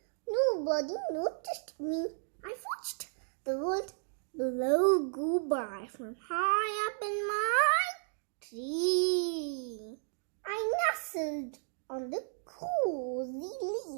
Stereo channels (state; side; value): silent; left; digital silence